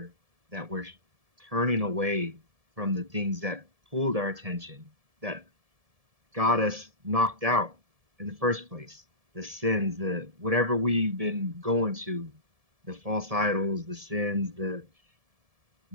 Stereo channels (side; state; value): left; late; 1.7 ms